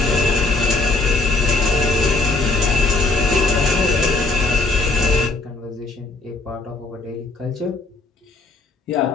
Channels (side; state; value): right; quieter; 3.4 dB